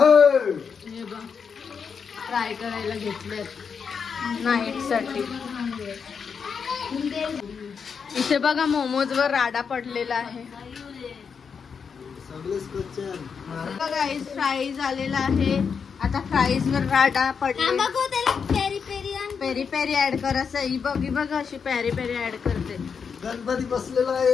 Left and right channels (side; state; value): right; quieter; 6.2 dB